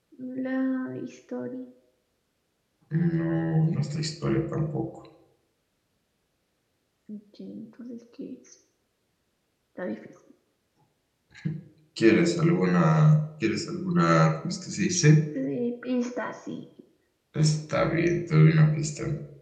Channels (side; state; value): both; identical; correlation 1.00